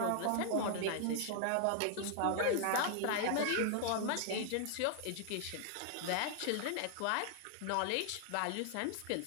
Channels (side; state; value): both; different; correlation 0.00